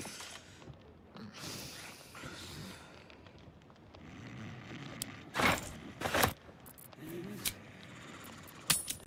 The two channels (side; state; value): both; identical; correlation 1.00